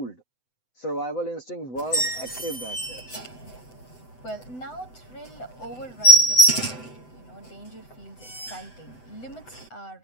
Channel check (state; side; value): late; right; 7.9 ms